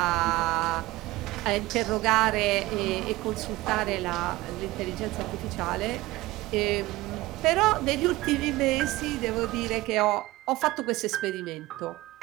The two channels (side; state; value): left; quieter; 18.9 dB